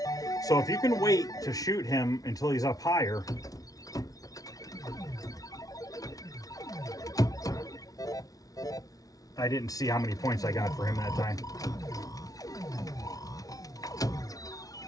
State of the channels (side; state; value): right; late; 0.18 ms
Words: So if you can wait to shoot him until he's up higher, I didn't see how many points I got for him that time.